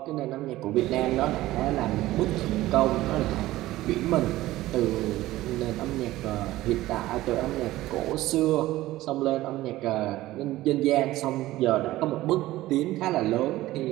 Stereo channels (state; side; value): quieter; left; 16.5 dB